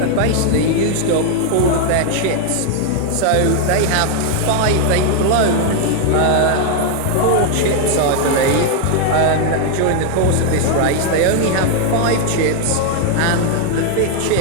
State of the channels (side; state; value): both; different; correlation 0.00